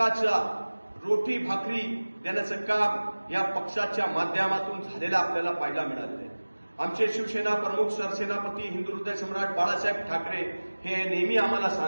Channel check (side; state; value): both; inverted; correlation -1.00